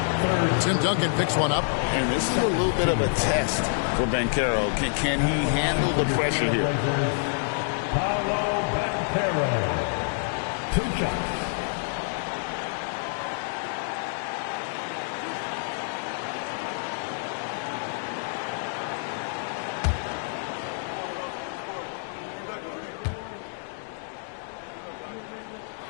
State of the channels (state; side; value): silent; right; digital silence